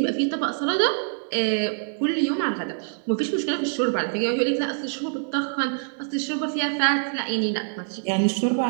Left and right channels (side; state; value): left; silent; 62 dB below the other